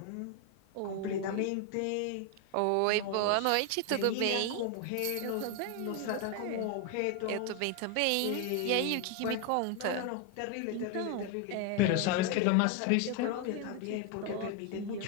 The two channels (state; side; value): different; both; correlation 0.01